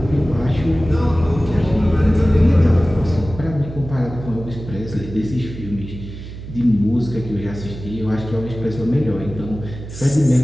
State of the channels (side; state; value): right; noise; hum, 11 dB below the sound